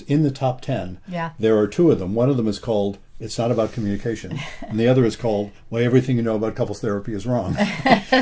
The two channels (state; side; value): identical; both; correlation 1.00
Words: in the top 10, there are 2 of them. One of them is called It's Not About Communication, and the other is called Why Everything You Know About Couples Therapy is Wrong.